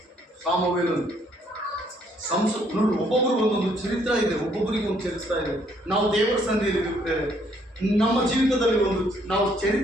ಸಾಮವೇಲನು. ನೋಡಿ, ಒಬ್ಬೊಬ್ಬರಿಗೆ ಒಂದೊಂದು ಚರಿತ್ರ ಇದೆ, ಒಬ್ಬೊಬ್ಬರಿಗೆ ಒಂದು ಚರಿತ್ರ ಇದೆ. ನಾವು ದೇವರ ಸನ್ನಿಧಿಯಲ್ಲಿ ಇರ್ತೇವೆ, ನಮ್ಮ ಜೀವಿತದಲ್ಲಿ ನಾವು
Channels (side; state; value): both; normal; correlation 0.67